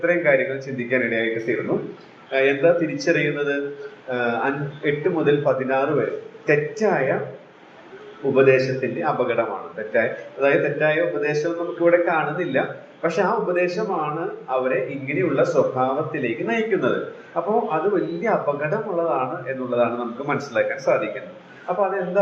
ചിന്തിക്കാൻ ഇടയായിട്ട് തീർന്നു. എന്താ തിരിച്ചറിയുന്നത്? 8 മുതൽ 16 വരെ തെറ്റായ ഉപദേശത്തിന്റെ അപകടമാണ്. തെറ്റായ ഉപദേശം നമുക്കിവിടെ കാണുന്നില്ല, പക്ഷെ ആ ഉപദേശമാണ് അവരെ ഇങ്ങനെയുള്ള സ്വഭാവത്തിലേക്ക് നയിക്കുന്നത്. അപ്പോൾ അത് വലിയ അപകടമുള്ളതാണ് എന്നുള്ളതാണ് നമുക്ക് മനസ്സിലാക്കാൻ സാധിക്കുന്നത്. അപ്പൊ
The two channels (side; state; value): both; identical; correlation 1.00